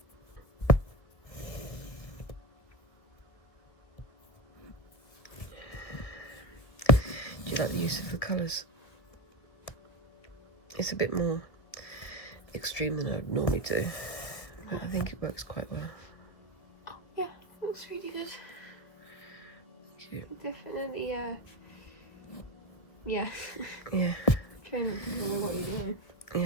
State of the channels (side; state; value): right; late; 1.9 ms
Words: Do you like the use of the colours? It's a bit more extreme than I would normally do, but I think it works quite well. Oh, yeah, looks really good. Thank you. Definitely, yeah. Yeah. Try can remember what you're doing.